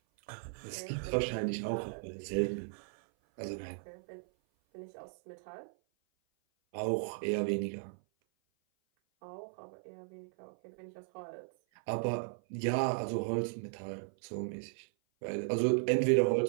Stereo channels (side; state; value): left; silent; 54 dB below the other